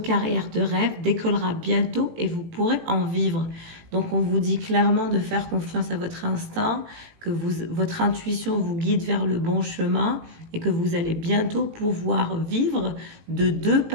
de rêve décollera bientôt et vous pourrez en vivre. Donc on vous dit clairement de faire confiance à votre instinct, que votre intuition vous guide vers le bon chemin et que vous allez bientôt pouvoir vivre de deux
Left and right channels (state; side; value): late; left; 18 ms